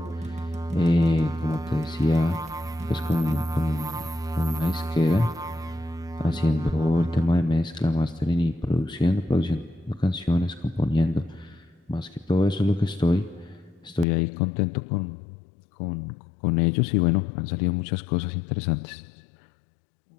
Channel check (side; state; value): right; drops out; at 14.1 s